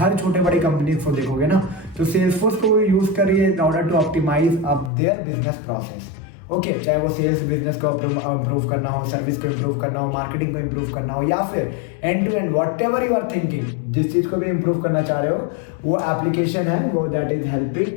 छोटे बड़े कंपनीज को देखोगे ना, तो सेल्सफोर्स को यूज करिए in order to optimize up their business process, okay. चाहे वो सेल्स बिजनेस को इम्प्रूव करना हो, सर्विस को इम्प्रूव करना हो, मार्केटिंग को इम्प्रूव करना हो, या फिर end to end whatever you are thinking, जिस चीज को भी इम्प्रूव करना चाह रहे हो, वो एप्लीकेशन है वो that is helping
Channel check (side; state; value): right; drops out; at 4.9 s